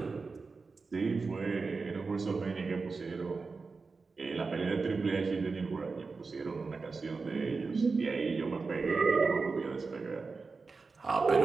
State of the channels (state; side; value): quieter; left; 4.3 dB